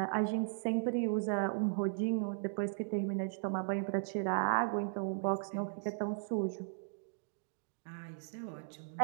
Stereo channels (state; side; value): silent; left; digital silence